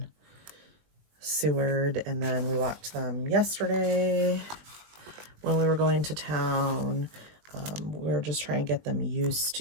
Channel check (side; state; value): left; late; 20 ms